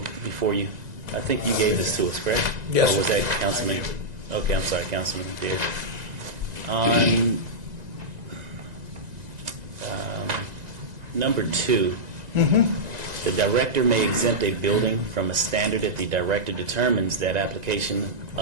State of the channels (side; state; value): left; late; 1.9 ms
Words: before you? I think you gave this to us, correct? Yes. Or was that Councilman? Okay, I'm sorry, Councilman Beard. On number 2, the director may exempt a building from a standard if the director determines that application